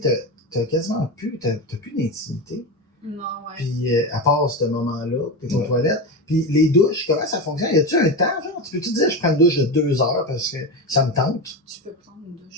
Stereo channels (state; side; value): normal; both; correlation 0.19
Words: sais, t'as quasiment plus... T'as plus d'intimité. Non, ouais. Puis, à part ce moment-là, t'es aux toilettes. Puis, les douches, comment ça fonctionne? Y a-tu un temps, genre? Tu peux-tu dire, je prends une douche de 2 heures parce que ça me tente? Tu peux prendre une